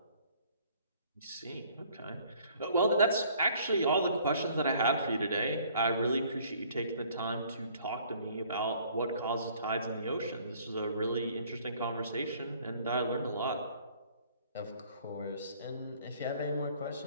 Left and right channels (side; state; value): both; inverted; correlation -0.57